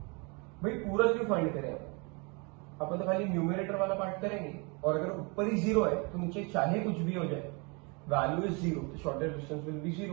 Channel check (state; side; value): quieter; left; 30.8 dB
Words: भाई पूरा क्यों फाइंड करें, अपन तो खाली न्यूमरेटर वाला पार्ट करेंगे, और अगर ऊपर ही 0 है तो नीचे चाहे कुछ भी हो जाए, वैल्यू इज 0, तो shortest distance will be